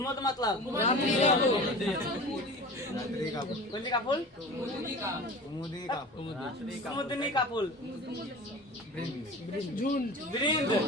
मतलब कुंजी का फूल, कुमुदनी का फूल, बृंद,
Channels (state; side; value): normal; both; correlation 0.36